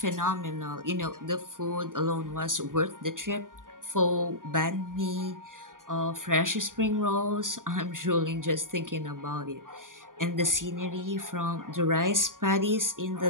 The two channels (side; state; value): left; late; 0.89 ms